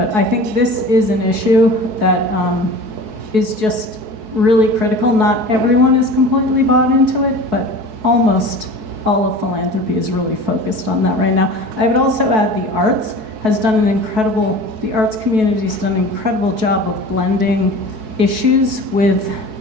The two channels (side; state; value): left; late; 4.6 ms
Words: I think this is an issue that is just really critical. Not everyone is completely bought into it, but almost all of philanthropy is really focused on that right now. I would also add the arts has done an incredible, the arts community has done an incredible job of blending issues with